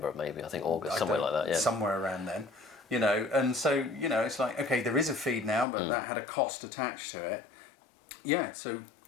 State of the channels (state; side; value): drops out; right; at 5.7 s